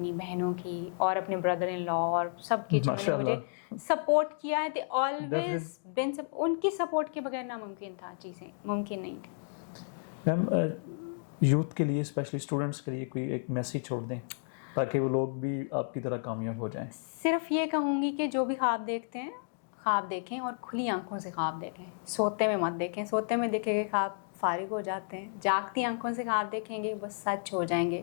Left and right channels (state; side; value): silent; right; digital silence